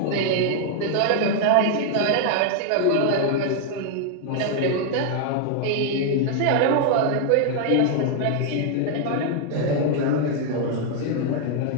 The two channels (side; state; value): both; different; correlation 0.00